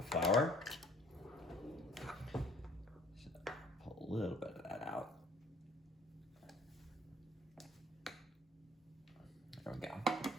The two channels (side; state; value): both; normal; correlation 0.55